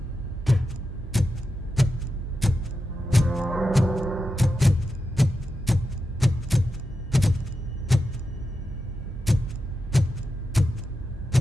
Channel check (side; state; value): both; normal; correlation 0.89